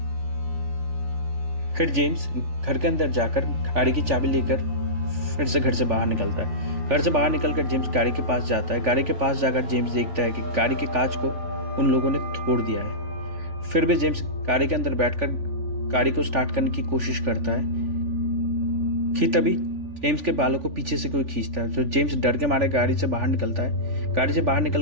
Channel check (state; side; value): late; left; 3.4 ms